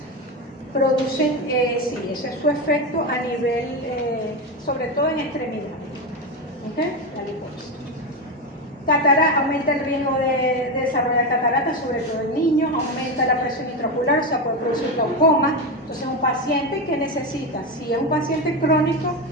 Producen, sí, ese es su efecto a nivel, sobre todo en extremidades. ¿Okay? La liposis. Aumenta el riesgo de desarrollar cataratas, sobre todo en niños, aumenta la presión intraocular, o sea, puede producir glaucoma. Entonces, un paciente que necesita, si es un paciente crónico,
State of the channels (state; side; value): normal; both; correlation 0.14